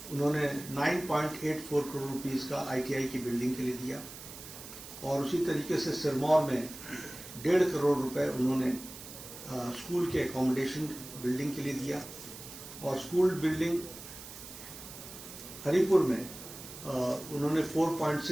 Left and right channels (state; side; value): noise; right; hiss, 13 dB below the sound